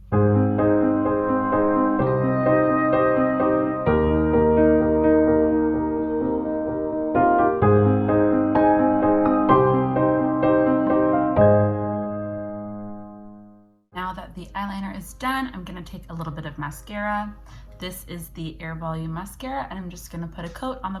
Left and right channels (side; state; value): both; identical; correlation 1.00